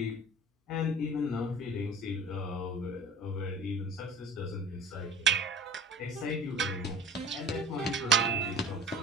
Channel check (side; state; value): both; normal; correlation 0.41